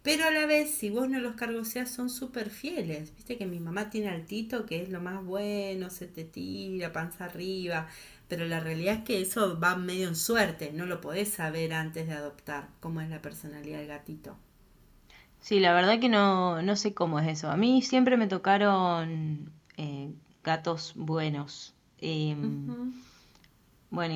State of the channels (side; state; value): both; identical; correlation 1.00